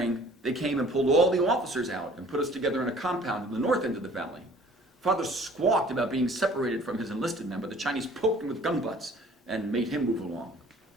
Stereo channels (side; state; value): both; normal; correlation 0.52